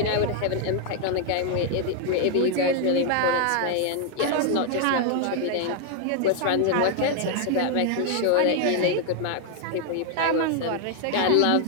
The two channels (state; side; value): different; both; correlation 0.00